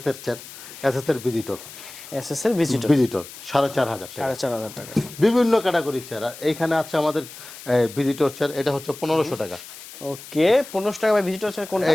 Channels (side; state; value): left; noise; hiss, 15 dB below the sound